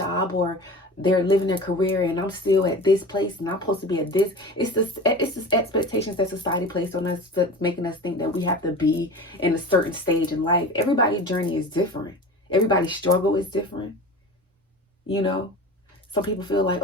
or they're living their career, and I'm still at this place and I'm supposed to be at this. It's this expectations that society placed on us that's making us think that we have to be in a certain stage in life. Everybody's journey is different. Everybody's struggle is different. You know, some people feel like,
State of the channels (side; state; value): both; normal; correlation 0.34